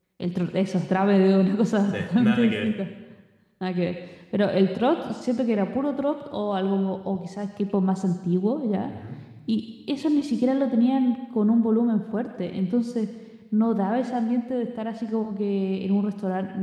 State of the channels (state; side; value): identical; both; correlation 1.00